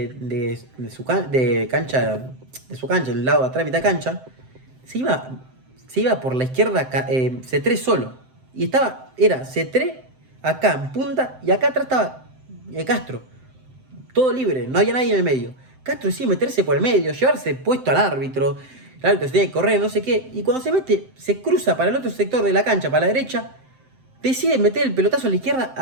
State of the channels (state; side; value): late; left; 7.7 ms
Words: de cancha, de su cancha, el lado de atrás, mitad cancha. Se iba, se iba por la izquierda C3 solo. Y era C3 acá en punta y acá atrás estaba Castro. Todo libre, no había nadie en el medio. Castro decide meterse por el medio, llevarse puesto al árbitro. El árbitro se tiene que correr, no sé qué. Y cuando se mete, se cruza para el otro sector de la cancha, para la derecha. Decide meter el pelotazo a la izquierda